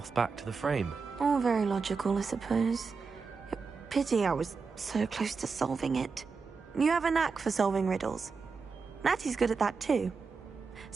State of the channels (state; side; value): quieter; left; 4.9 dB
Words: back to the frame. All very logical, I suppose. Pity I was so close to solving it. You have a knack for solving riddles. Natty's good at that too.